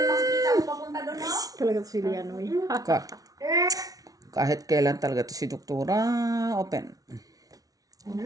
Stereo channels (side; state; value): left; late; 0.18 ms